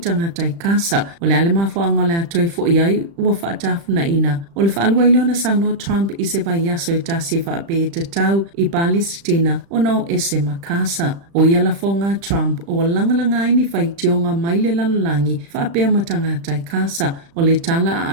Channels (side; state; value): left; late; 35 ms